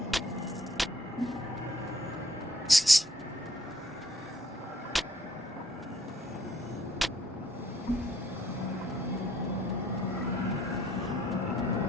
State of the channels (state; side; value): normal; both; correlation 0.64